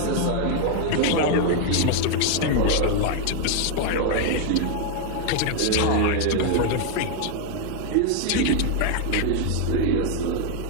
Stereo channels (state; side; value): different; both; correlation 0.00